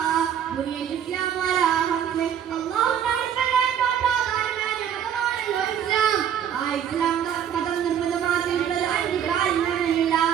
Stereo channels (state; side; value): quieter; left; 9.0 dB